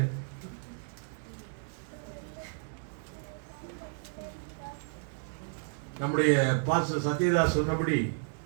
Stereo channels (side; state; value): left; silent; 56 dB below the other